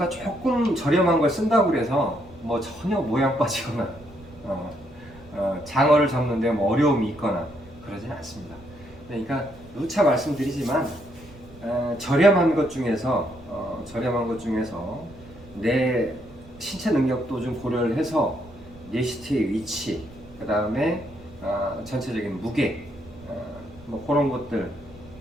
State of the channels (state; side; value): noise; right; rumble, 21 dB below the sound